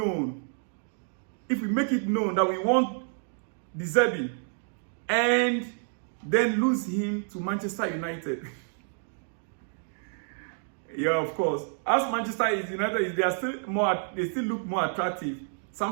If we make it known that we want De Zerbi and then lose him to Manchester United. Yeah, of course. As Manchester United, they still look more attractive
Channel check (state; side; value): silent; left; digital silence